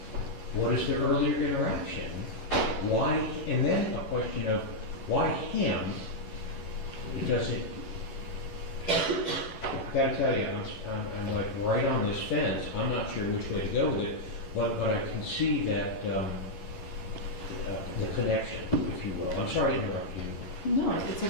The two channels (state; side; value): late; right; 11 ms